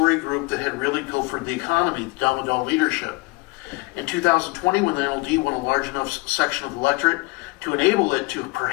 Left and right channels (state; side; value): quieter; right; 24.5 dB